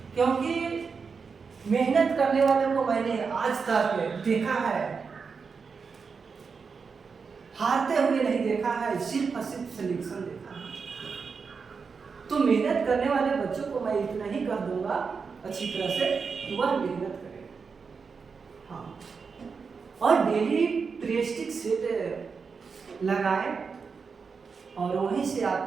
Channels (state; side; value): quieter; left; 5.4 dB